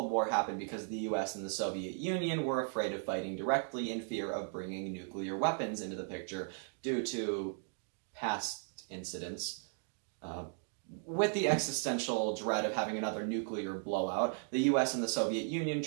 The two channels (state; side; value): silent; left; 53 dB below the other